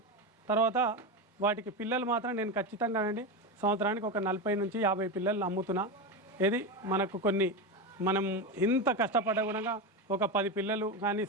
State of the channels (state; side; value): normal; both; correlation 0.16